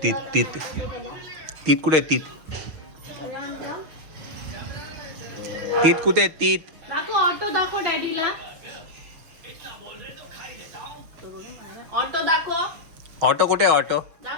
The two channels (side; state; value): left; late; 6.3 ms